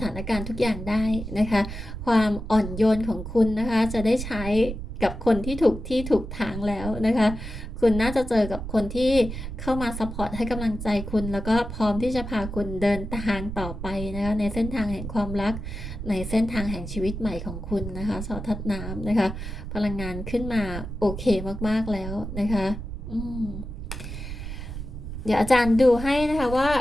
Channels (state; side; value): noise; right; rumble, 8 dB below the sound